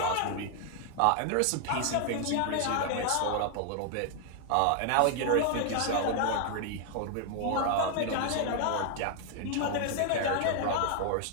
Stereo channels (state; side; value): different; both; correlation 0.00